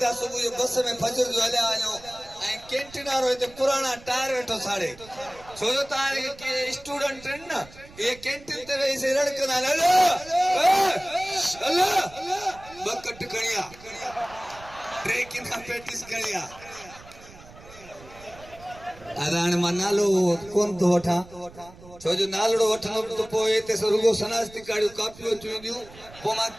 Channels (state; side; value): noise; right; rumble, 21 dB below the sound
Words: सुबह जो बस में फजर जो हले आयो ए कैंटीन वालो ते पुराना टायर वेठो साड़े छोजो तारे के स्टूडेंट न ये कैंटीन ते वैसे रड़कना हेलो हेलो बकट कणिया ट्रेकिन का प्रैक्टिस करिया अदान मनालो कोन तो वठा छोजो नालड़ो वठनो तो पोए ते रुगो सनास्ती काडियो कापियो चुंदियो पो मा